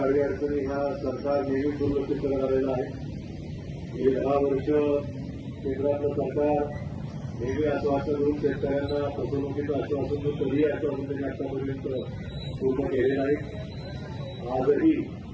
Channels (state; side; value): identical; both; correlation 1.00